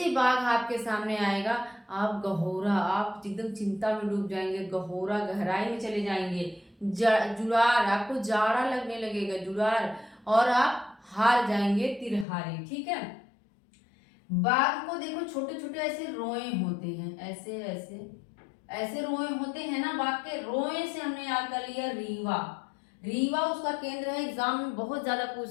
बाघ आपके सामने आएगा आप गहोरा, आप एकदम चिंता में डूब जाएंगे, गहोरा गहराई में चले जाएंगे। जुड़ार, आपको जाड़ा लगने लगेगा, जुड़ार, और आप हार जाएंगे, तिरहारी। ठीक है। बाघ को देखो छोटे छोटे ऐसे रोए होते हैं, ऐसे ऐसे ऐसे रोए होते हैं ना बाघ के, रोए से हमने याद कर लिया रीवा। रीवा उसका केंद्र है, एग्जाम में बहुत ज्यादा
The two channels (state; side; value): drops out; right; at 12.2 s